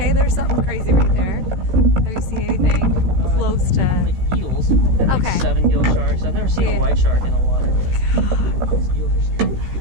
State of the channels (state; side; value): late; left; 16 ms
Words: there's something crazy right there. Have you seen anything close to? Like eels. And like Okay. 7 gill sharks. I've never seen Yeah. a white shark in the water, but these eels are scary.